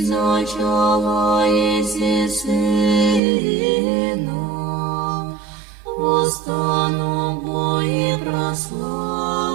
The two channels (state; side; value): drops out; left; at 3.2 s